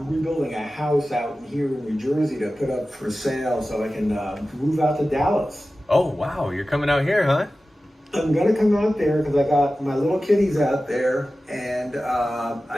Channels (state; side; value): normal; both; correlation 0.95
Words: rebuilding a house out here in New Jersey to put up for sale so I can move out to Dallas. Oh, wow. You're coming out here, huh? I'm gonna come out there because I got my little kitties out there, and